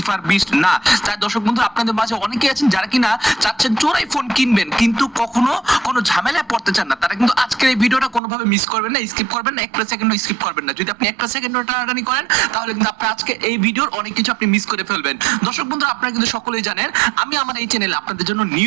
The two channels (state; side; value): drops out; left; at 8.2 s